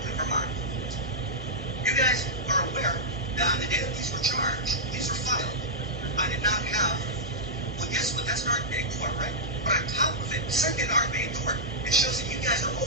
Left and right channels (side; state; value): both; normal; correlation -0.09